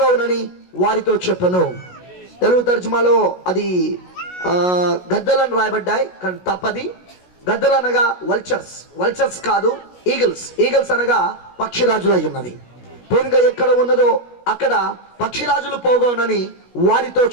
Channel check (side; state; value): right; late; 16 ms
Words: వారితో చెప్పను. తెలుగు తర్జుమాలో అది గద్దలను రాయబడ్డాయి, కానీ తప్పది. గద్దలు అనగా వల్చర్స్, వల్చర్స్ కాదు, ఈగల్స్. ఈగల్స్ అనగా పక్షిరాజులు అయి ఉన్నది. పీనుగ ఎక్కడ ఉన్నదో అక్కడ పక్షిరాజులు పోగవునని వారితో